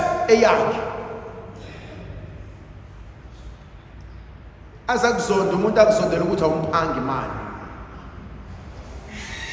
eyakhe. Azakuzonda umuntu akuzondela ukuthi awumphangi imali.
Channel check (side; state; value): both; identical; correlation 1.00